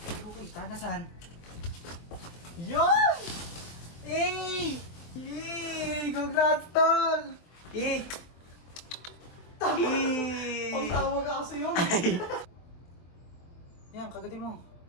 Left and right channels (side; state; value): right; late; 24 ms